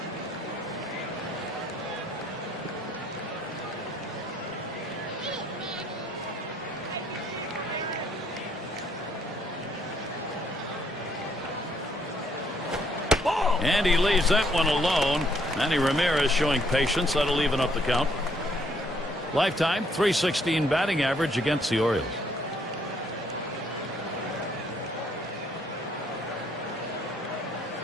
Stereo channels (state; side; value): normal; both; correlation 0.68